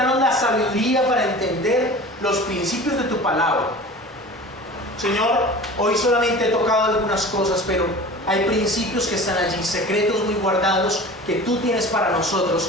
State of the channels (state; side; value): normal; both; correlation 0.38